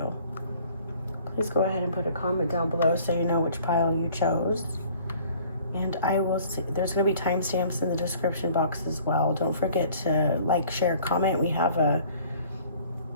Please go ahead and put a comment down below so you know which pile you chose. And I will see, there's going to be timestamps in the description box as well. Don't forget to like, share, comment. We have a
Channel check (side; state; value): both; inverted; correlation -0.54